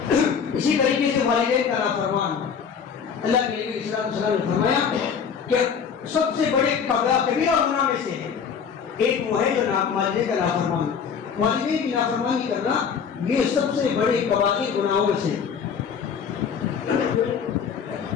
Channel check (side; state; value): right; quieter; 6.8 dB